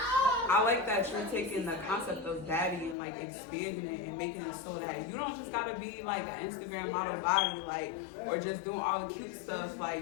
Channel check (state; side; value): drops out; right; at 3.0 s